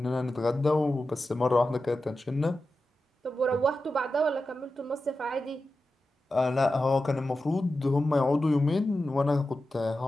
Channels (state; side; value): normal; both; correlation 0.92